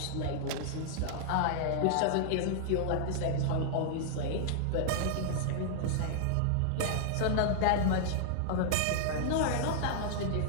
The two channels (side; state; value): both; different; correlation -0.01